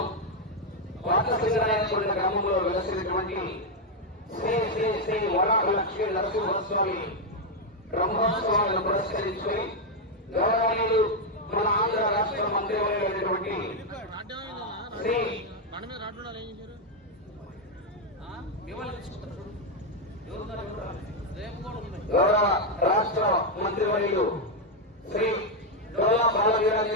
కోట సింగరాయకొండ గ్రామంలో వెలసినటువంటి శ్రీ శ్రీ శ్రీ వరాహ లక్ష్మీ నరసింహస్వామి బ్రహ్మోత్సవాలను పురస్కరించుకుని గౌరవనీయులు మన ఆంధ్ర రాష్ట్ర మంత్రివర్యులైనటువంటి శ్రీ గౌరవ రాష్ట్ర మంత్రివర్యులు శ్రీ డోలా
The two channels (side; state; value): both; normal; correlation 0.02